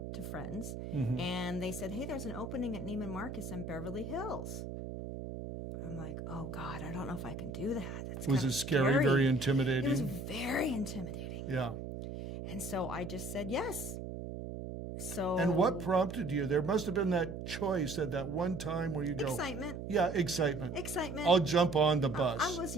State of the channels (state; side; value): noise; right; hum, 7 dB below the sound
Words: to friends, Mm-hmm. and they said, hey, there's an opening at Neiman Marcus in Beverly Hills. I'm like, oh God, I don't know if I can do that. That's Was kind it of scary, very intimidating? It was very intimidating. Yeah. And so I just said yes. So And what prompted you? There must have been that choice at that one time where you go, excitement. yeah, excitement. Excitement. I'll jump on the bus. I was